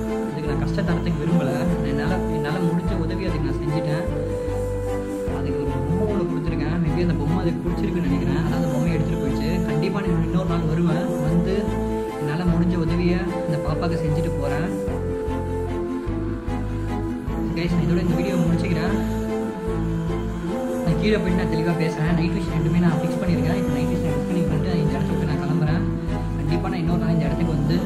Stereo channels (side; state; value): both; identical; correlation 1.00